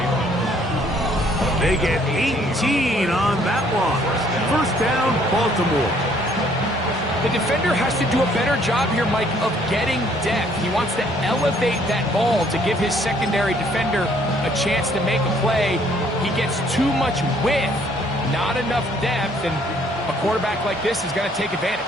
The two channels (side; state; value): both; normal; correlation 0.63